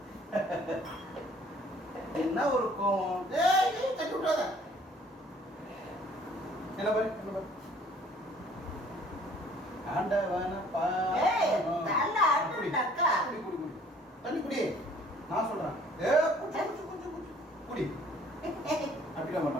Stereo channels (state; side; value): normal; both; correlation 0.56